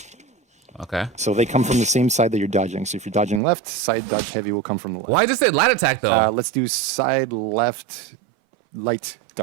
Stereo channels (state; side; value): drops out; left; at 3.4 s